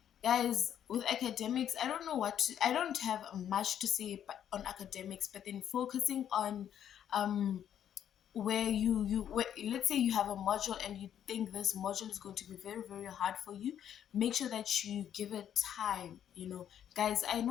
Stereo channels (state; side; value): quieter; right; 9.8 dB